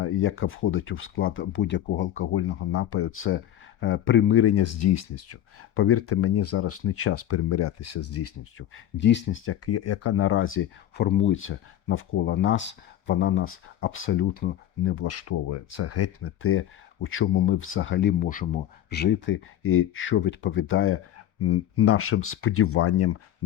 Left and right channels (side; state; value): right; quieter; 11.8 dB